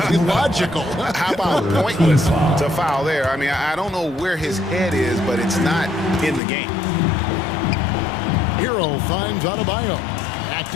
logical. How about pointless to foul there? I mean, I don't know where his head is, but it's not in the game. Hero finds Adebayo. Back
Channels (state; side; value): drops out; right; at 6.4 s